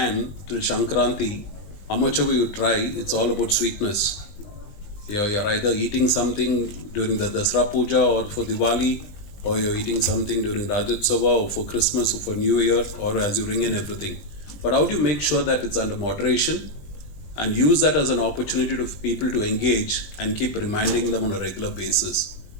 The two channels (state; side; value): late; right; 20 ms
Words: till Shankranti, how much ever you try, it's all about sweetness. You're either eating something during the Dasra Puja or for Diwali, or you're eating something during Rajotsava or for Christmas or for New Year, or as you ring in everything. But how do you make sure that it's under moderation and use that as an opportunity for people to engage and keep reminding them on a regular basis?